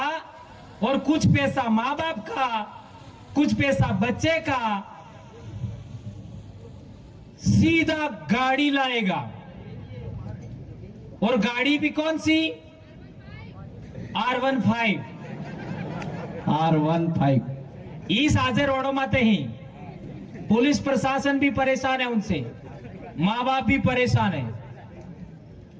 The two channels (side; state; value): both; identical; correlation 1.00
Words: और कुछ पैसा माँ बाप का, कुछ पैसा बच्चे का, सीधा गाड़ी लाएगा। और गाड़ी भी कौन सी? R15। इस आजे रोडों माते ही पुलिस प्रशासन भी परेशान है, उनसे माँ बाप भी परेशान है।